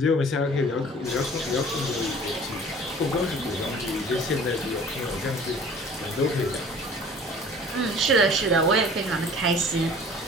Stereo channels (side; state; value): both; normal; correlation 0.47